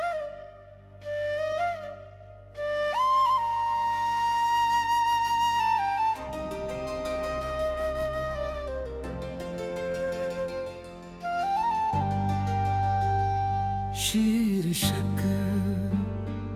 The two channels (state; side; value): identical; both; correlation 1.00